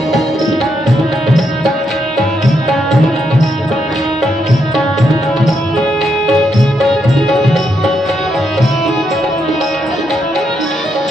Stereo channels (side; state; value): both; normal; correlation 0.79